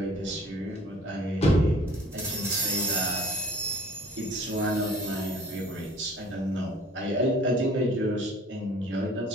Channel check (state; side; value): normal; both; correlation 0.51